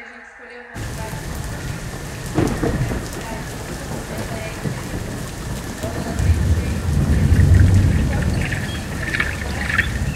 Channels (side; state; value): both; identical; correlation 1.00